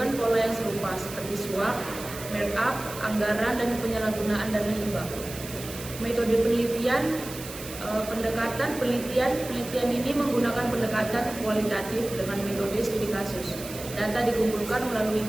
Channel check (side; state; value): right; noise; hiss, 12 dB below the sound